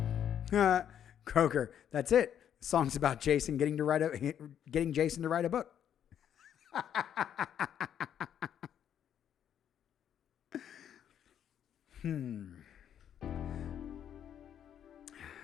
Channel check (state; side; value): quieter; right; 9.5 dB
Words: Croker, that's it. The song's about Jason getting Jason to write a book.